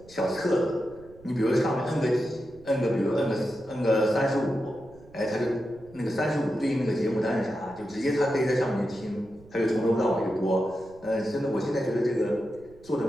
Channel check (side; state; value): right; noise; rumble, 24 dB below the sound